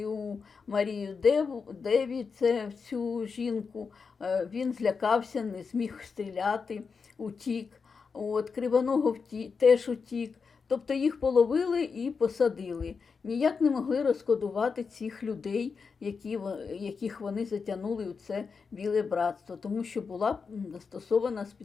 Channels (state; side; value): quieter; right; 5.3 dB